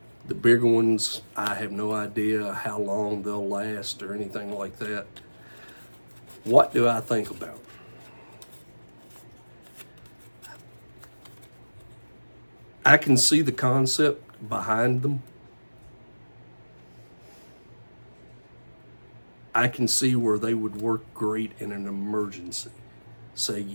The bigger ones, I have no idea how long they'll last or anything like that. What do I think about? I can see the concept behind them. I can see where they would work great in an emergency. Say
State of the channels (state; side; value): inverted; both; correlation -1.00